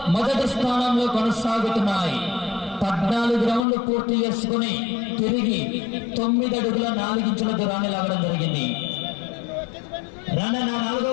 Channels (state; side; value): drops out; right; at 3.6 s